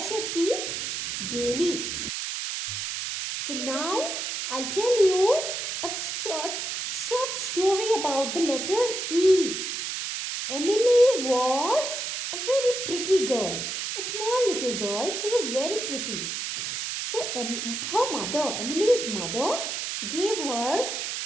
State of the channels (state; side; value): noise; right; hiss, 4 dB below the sound